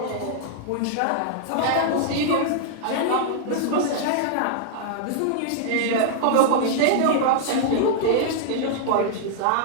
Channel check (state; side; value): different; both; correlation -0.01